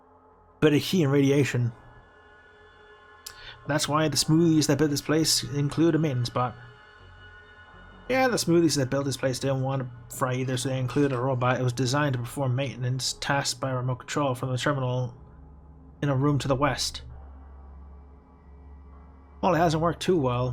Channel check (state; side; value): identical; both; correlation 1.00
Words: of heat and radiation. That's why the smoothies that built this place include a maintenance bot. Yeah, the smoothies that built this place didn't want to fry either, so they included a robot. It was designed to perform maintenance tasked by remote control from the terminal in a room to the west. Well, it hasn't worked too